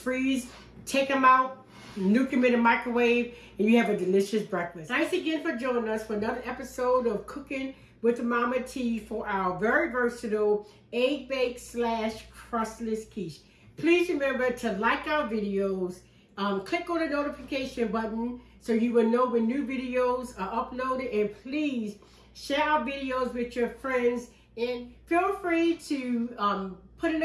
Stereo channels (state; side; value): identical; both; correlation 1.00